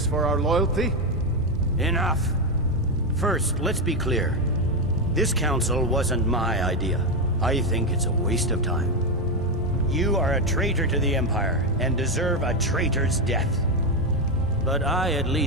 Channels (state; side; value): normal; both; correlation 0.08